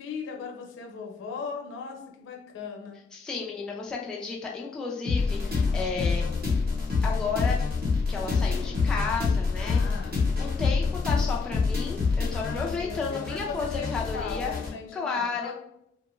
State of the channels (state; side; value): quieter; right; 4.3 dB